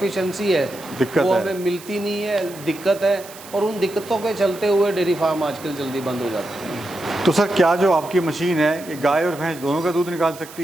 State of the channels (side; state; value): right; noise; hiss, 17 dB below the sound